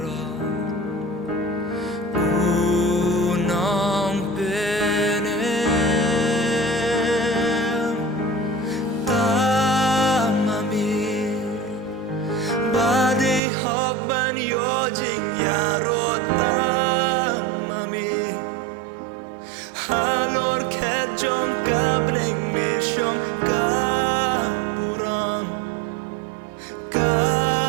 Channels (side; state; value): left; drops out; at 13.4 s